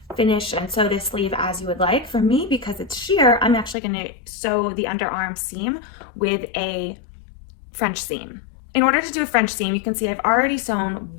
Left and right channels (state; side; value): drops out; right; at 3.8 s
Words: finish and sew this sleeve as you would like. For me, because it's sheer, I'm actually gonna sew the underarm seam with a French seam. In order to do a French seam, you can see I've already sewn